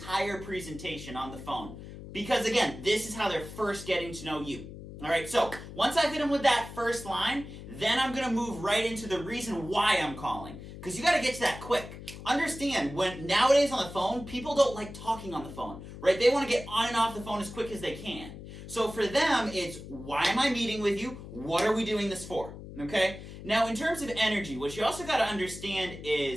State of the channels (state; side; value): noise; left; hum, 13 dB below the sound